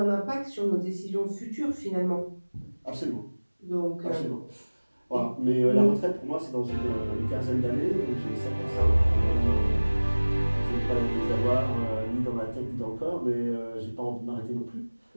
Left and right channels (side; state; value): both; inverted; correlation -1.00